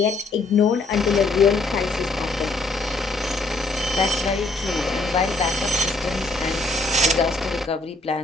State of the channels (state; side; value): quieter; right; 3.2 dB